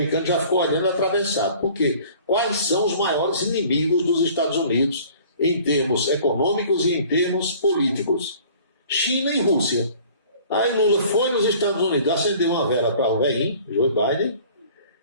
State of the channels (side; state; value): both; inverted; correlation -0.50